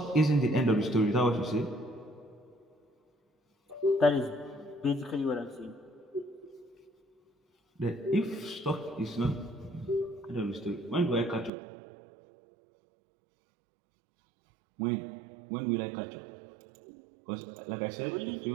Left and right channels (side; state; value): left; drops out; at 11.5 s